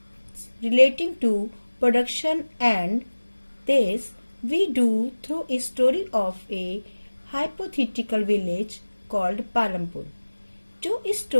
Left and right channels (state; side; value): inverted; both; correlation -1.00